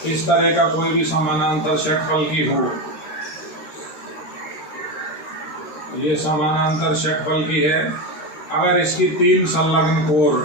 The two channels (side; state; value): right; late; 13 ms